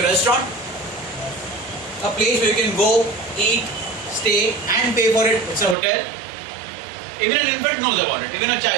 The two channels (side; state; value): left; drops out; at 5.8 s